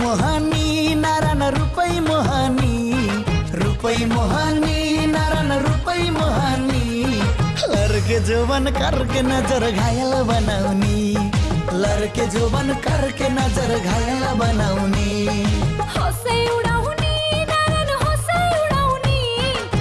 नारायण रुपै मोहनी रुख रुपई मोहानी नारायण रुपई मोहानी लड़के जोबन करके नजर घायल बनाउनी लड़के जोबन करके नजर घायल बनाउनी हँसै उडाउने नारायण हँसै उडाउने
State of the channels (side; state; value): both; identical; correlation 1.00